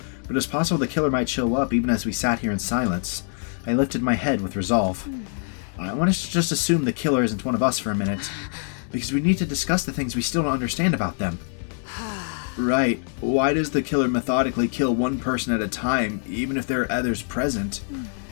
But it was possible the killer might show up even as we sat here in silence. I lifted my head with resolve. I want us to just assume the killer isn't one of us for a minute, because we need to discuss the things we still don't understand about them. Right. Why does the killer methodically kill one person at a time, even if there are others present?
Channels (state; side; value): silent; right; 60 dB below the other